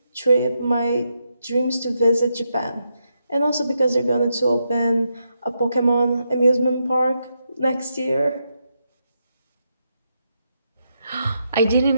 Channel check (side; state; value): both; inverted; correlation -0.82